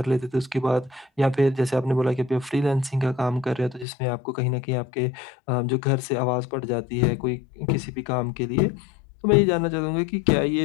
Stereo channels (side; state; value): right; drops out; at 3.9 s